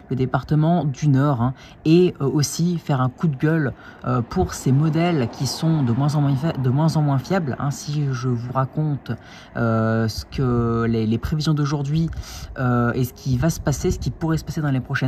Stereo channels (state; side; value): identical; both; correlation 1.00